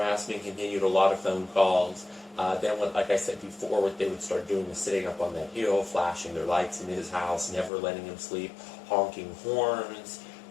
continued, a lot of phone calls. Then, like I said before, what they would start doing was sitting up on that hill, flashing their lights in his house, never letting him sleep, honking horns.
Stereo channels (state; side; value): drops out; right; at 7.7 s